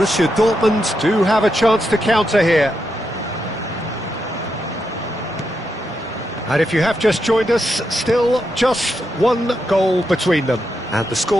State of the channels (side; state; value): both; normal; correlation 0.84